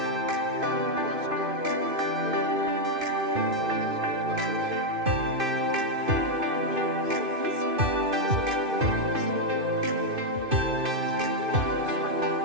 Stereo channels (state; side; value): late; left; 2.5 ms